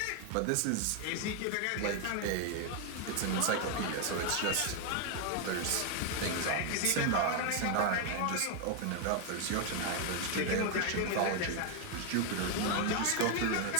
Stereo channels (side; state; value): both; different; correlation 0.01